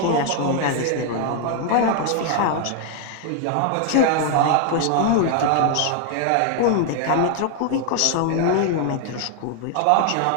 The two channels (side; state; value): both; different; correlation 0.00